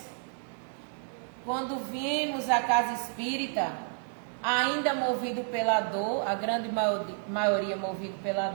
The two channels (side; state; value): left; silent; 57 dB below the other